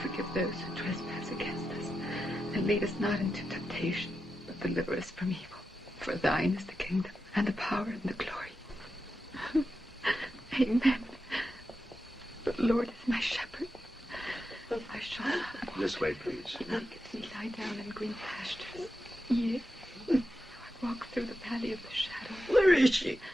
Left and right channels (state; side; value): normal; both; correlation 0.89